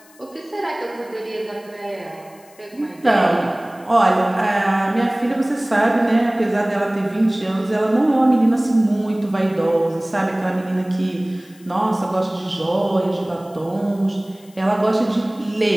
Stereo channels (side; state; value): left; noise; hiss, 27 dB below the sound